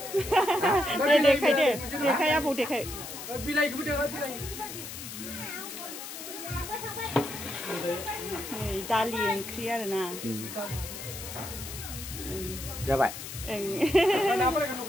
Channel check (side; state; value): left; noise; hiss, 9 dB below the sound